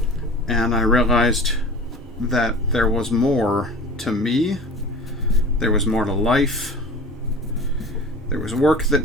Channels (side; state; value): both; normal; correlation 0.39